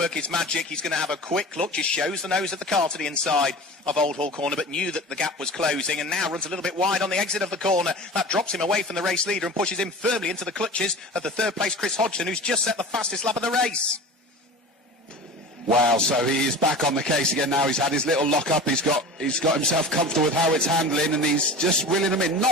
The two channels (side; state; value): both; normal; correlation 0.35